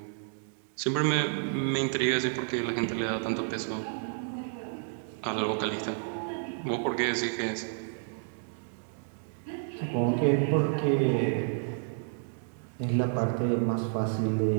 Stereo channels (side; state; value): left; silent; digital silence